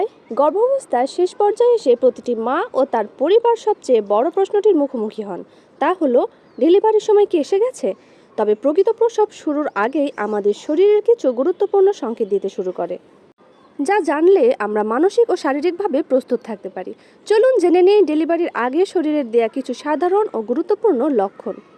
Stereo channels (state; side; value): identical; both; correlation 1.00